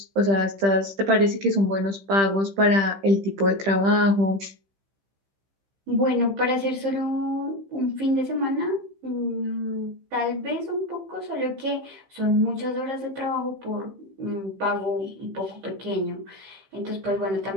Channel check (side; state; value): left; late; 15 ms